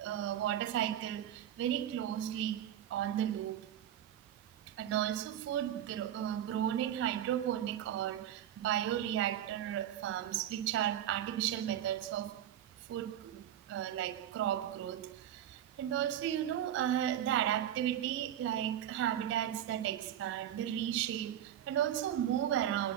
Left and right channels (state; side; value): quieter; left; 11.0 dB